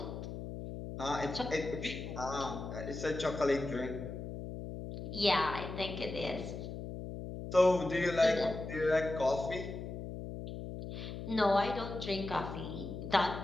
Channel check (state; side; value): noise; left; hum, 8 dB below the sound